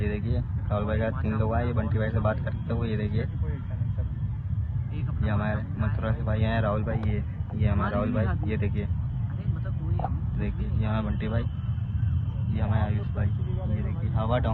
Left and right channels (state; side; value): identical; both; correlation 1.00